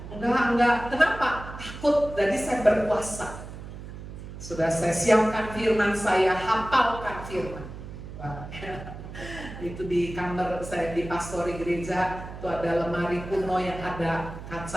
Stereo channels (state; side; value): noise; right; hum, 12 dB below the sound